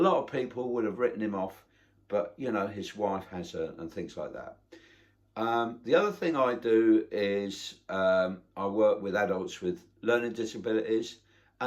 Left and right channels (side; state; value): both; identical; correlation 1.00